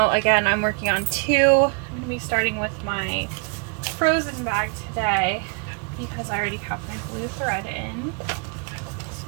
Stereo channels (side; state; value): left; quieter; 36.7 dB